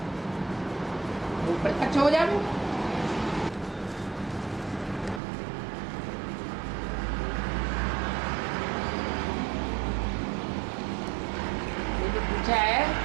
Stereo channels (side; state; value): left; drops out; at 5.2 s